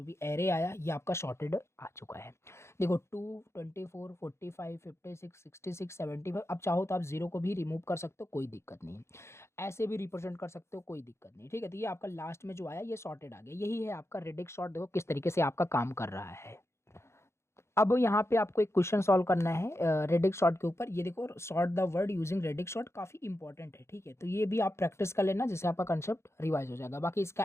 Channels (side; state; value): right; late; 0.13 ms